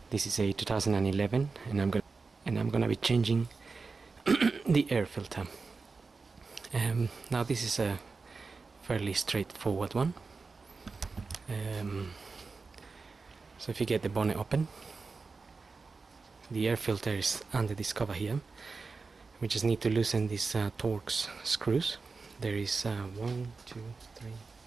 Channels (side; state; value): left; quieter; 4.3 dB